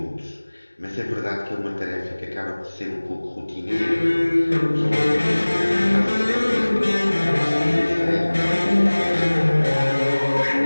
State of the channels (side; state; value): both; inverted; correlation -1.00